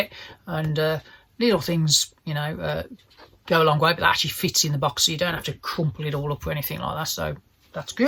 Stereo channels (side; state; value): both; identical; correlation 1.00